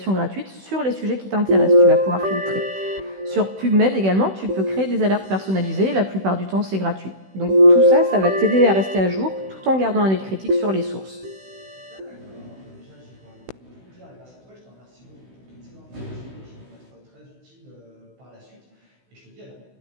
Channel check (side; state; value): left; late; 16 ms